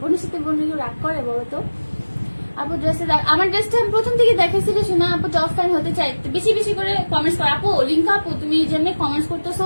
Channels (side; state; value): both; inverted; correlation -1.00